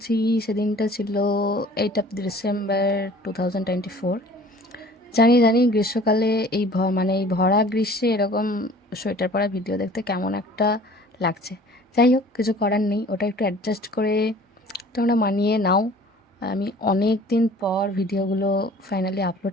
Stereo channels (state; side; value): normal; both; correlation 0.49